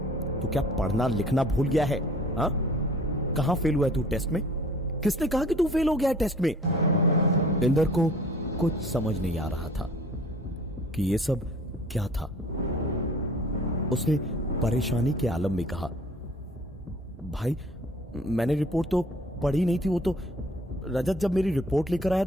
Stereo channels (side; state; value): both; normal; correlation 0.51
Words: तू क्या पढ़ना लिखना भूल गया है? हाँ, कहां फेल हुआ है तू टेस्ट में? किसने कहा कि तू फेल हो गया है टेस्ट में? इंदर को कुछ समझ नहीं आ रहा था कि यह सब क्या था। उसने परेशानी के आलम में कहा, भाई मैंने रिपोर्ट तो पढ़ी नहीं थी। वो तो रजत जब मेरी रिपोर्ट लेकर आया